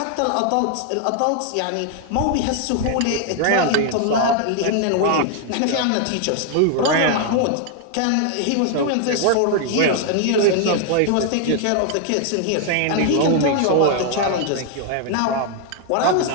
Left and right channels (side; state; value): both; different; correlation 0.00